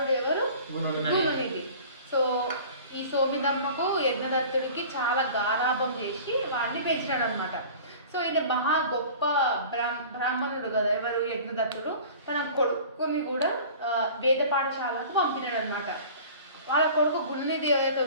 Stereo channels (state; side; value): inverted; both; correlation -0.42